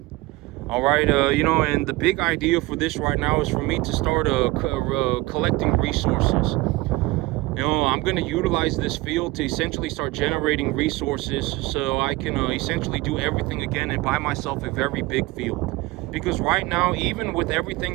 All right, and the big idea for this right now is for me to start collecting resources. I'm going to utilize this field to essentially start generating resources so I can essentially do everything again and buy myself a very big field. Because right now, even with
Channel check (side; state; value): left; quieter; 20.2 dB